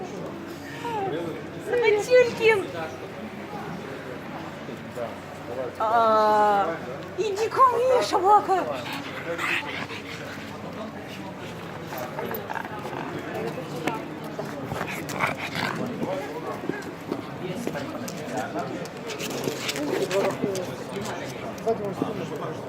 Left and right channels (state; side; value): identical; both; correlation 1.00